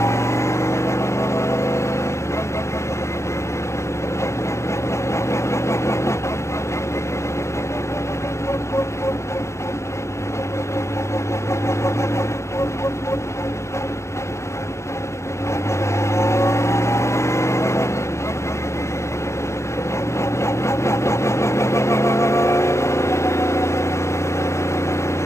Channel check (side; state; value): right; late; 0.14 ms